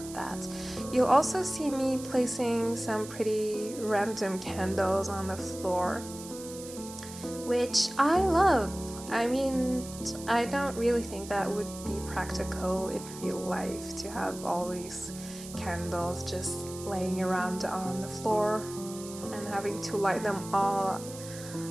that. You'll also see me placing some pretty random candles on the floor, which I love. I mean, I don't really think that would be practical in real life to have all these candles just laying around on the floor and having to light them all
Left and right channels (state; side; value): noise; right; hiss, 14 dB below the sound